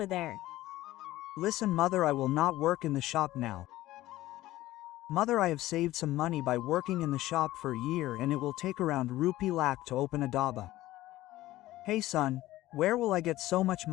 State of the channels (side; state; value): right; quieter; 16.1 dB